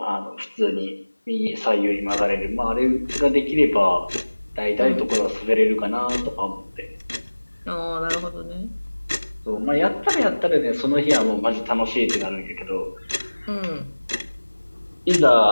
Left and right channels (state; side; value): inverted; both; correlation -1.00